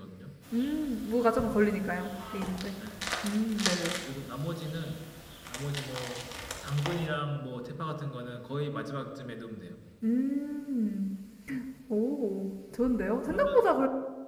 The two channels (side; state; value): both; identical; correlation 1.00